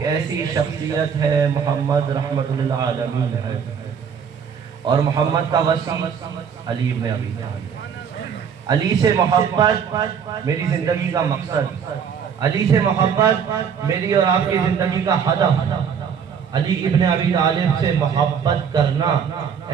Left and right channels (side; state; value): left; quieter; 7.2 dB